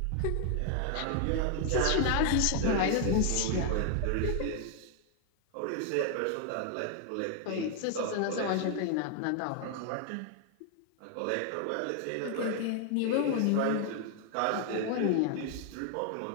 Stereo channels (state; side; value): different; both; correlation 0.00